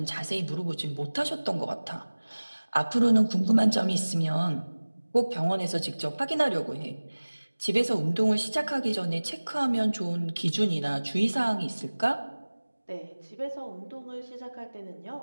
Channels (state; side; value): inverted; both; correlation -1.00